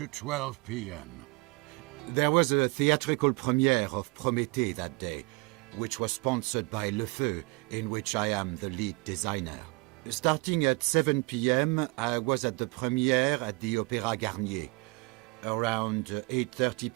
12 p.m.? There was a theatrical premiere of Prométhée that day, which was sponsored by Le Feu, in which I am the lead designer. Starting at 7 p.m., I was at the premiere at the Opéra Garnier. Around 8:30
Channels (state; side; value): quieter; left; 26.5 dB